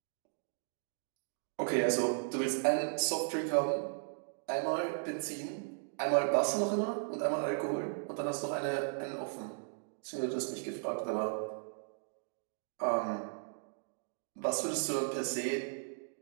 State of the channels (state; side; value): silent; left; digital silence